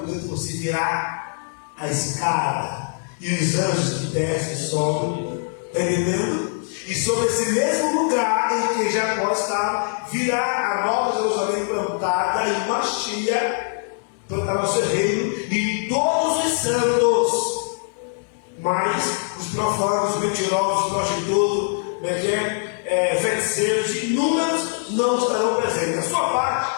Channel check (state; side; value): silent; right; digital silence